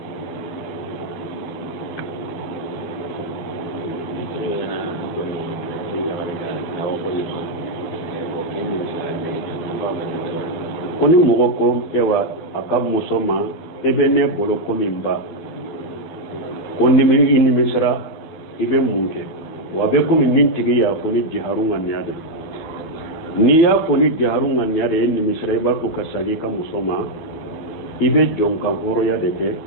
koni mogo ko ewa akab musoma ebe ne bolo ko mimba konni mi inni misra ibe munke wa be ko min nintigi ya foni jiharunga nyade ni ya foni jiharunga nyade inni misra iba ko kasagi ka musoma ibe jonka horo ya deke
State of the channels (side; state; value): right; late; 12 ms